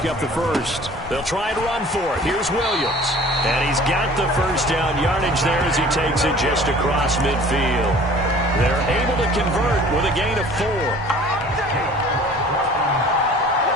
up the first. They'll try and run for it. Here's Williams. And he's got the 1st down yardage there as he takes it just across midfield. They're able to convert with a gain of 4.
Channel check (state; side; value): normal; both; correlation 0.48